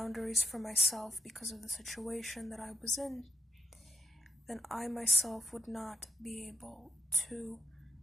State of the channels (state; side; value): normal; both; correlation 0.76